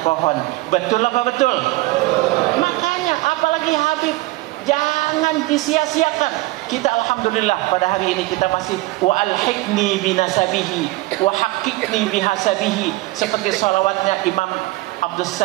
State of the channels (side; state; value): left; quieter; 20.1 dB